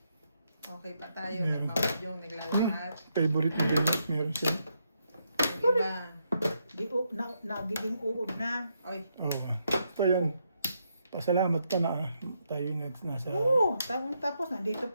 okay pa tayo. Meron. Nagmamadyong, naglalakad. Favorite na games meron siya. Yung iba, Di, nagiging uod na. oy, Oo. Ito yung pasalamat ka na tayo nasa... Oo, tapos nandito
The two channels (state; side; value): inverted; both; correlation -0.79